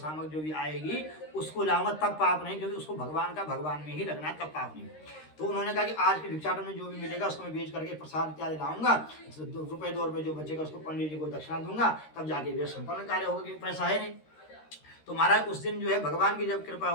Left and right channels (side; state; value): right; late; 13 ms